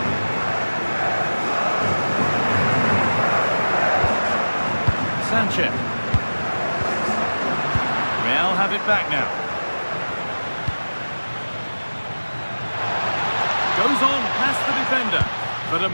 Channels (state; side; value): inverted; both; correlation -1.00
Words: Sanchez. Real have it back now. Goes on past the defender, but